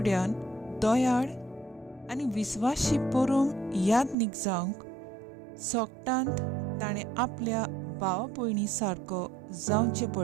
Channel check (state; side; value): drops out; left; at 4.2 s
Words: दयाळ आनी विस्वासी परम यादनीक जावंक सोगटांत ताणें आपल्या भावा भयणी सारको जावचें